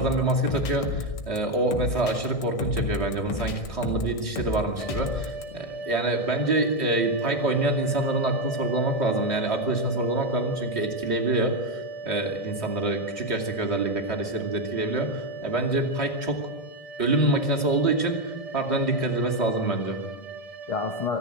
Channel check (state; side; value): late; right; 1.6 ms